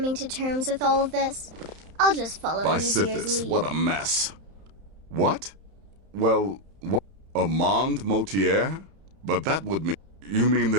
to terms with all of this. I'll just follow Nazir's Bysithis, lead. what a mess. What? Well, what? Armand Mortier? But that would mean... You mean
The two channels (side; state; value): left; late; 31 ms